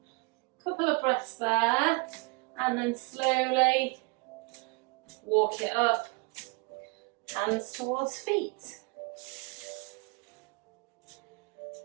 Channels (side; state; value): left; quieter; 27.9 dB